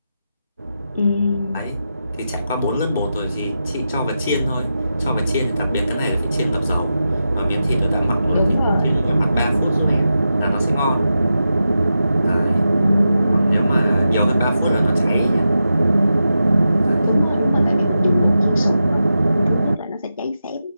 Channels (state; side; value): inverted; both; correlation -0.89